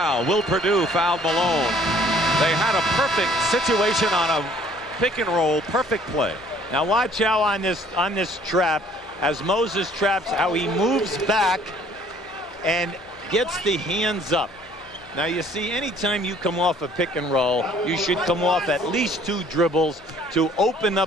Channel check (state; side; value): normal; both; correlation 0.57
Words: Will Perdue fouled Malone. They had a perfect situation on a pick and roll. Perfect play. Now watch out on this trap as Moses traps, how he moves back and gets the hands up. Now you see, anytime you come off a pick and roll, you should come off at least 2 dribbles to open